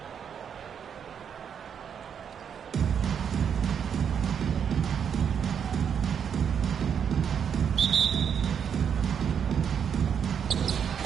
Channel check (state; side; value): quieter; left; 7.7 dB